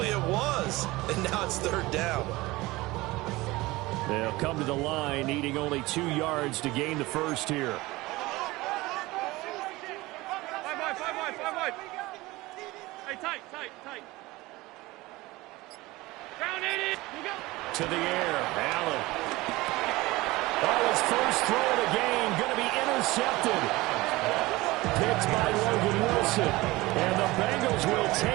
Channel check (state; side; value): quieter; left; 20.3 dB